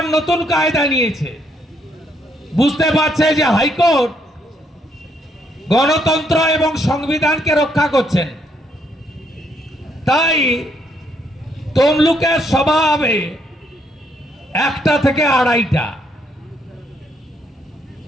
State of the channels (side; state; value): both; normal; correlation 0.72